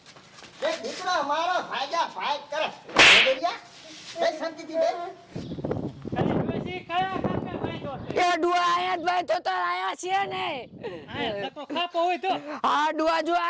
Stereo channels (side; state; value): both; identical; correlation 1.00